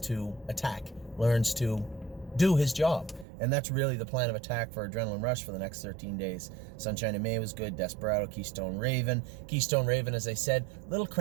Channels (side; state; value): left; drops out; at 3.2 s